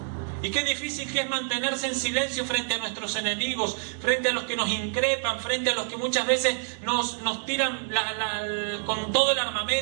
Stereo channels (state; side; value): silent; left; digital silence